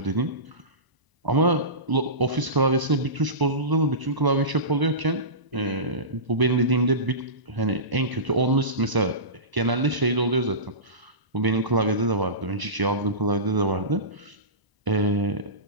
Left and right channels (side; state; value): left; late; 1.0 ms